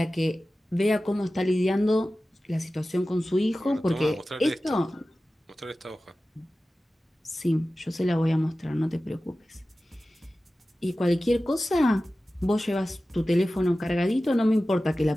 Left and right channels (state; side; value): normal; both; correlation 0.95